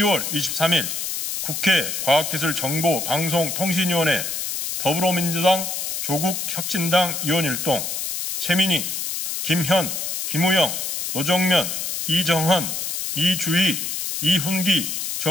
23일 국회 과학기술정보방송통신위원회 더불어민주당 조국혁신당 의원일동 최민희, 김현, 김우영, 노정면, 이정헌, 이주희, 이훈기,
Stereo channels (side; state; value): left; noise; hiss, 3 dB below the sound